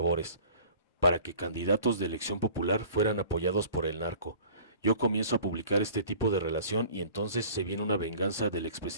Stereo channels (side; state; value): both; inverted; correlation -0.46